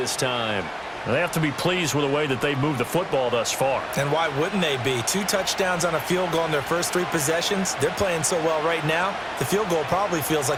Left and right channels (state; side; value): identical; both; correlation 1.00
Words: time. They have to be pleased with the way that they've moved the football thus far. And why wouldn't they be? 2 touchdowns on a field goal in their first 3 possessions. They're playing so well right now, the field goal probably feels